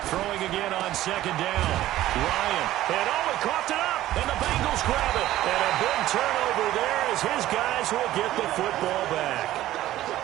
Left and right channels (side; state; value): left; quieter; 14.5 dB